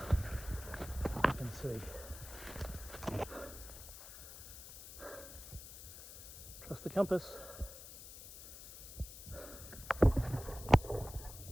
I can see. Trust the compass.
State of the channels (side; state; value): left; noise; hiss, 13 dB below the sound